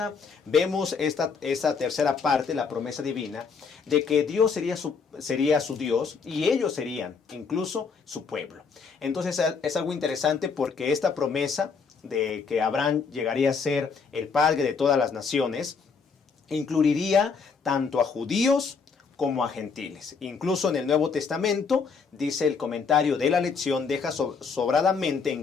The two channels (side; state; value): right; quieter; 5.4 dB